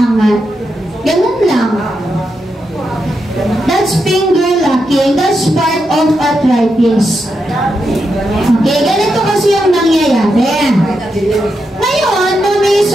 Ganun lang. That's finger locking. That's part of arthritis. Okay, ganito kasi yung nangyayari. Ngayon, mami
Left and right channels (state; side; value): normal; both; correlation 0.85